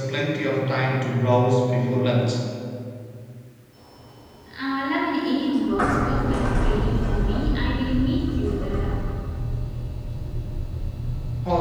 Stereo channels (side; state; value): both; identical; correlation 1.00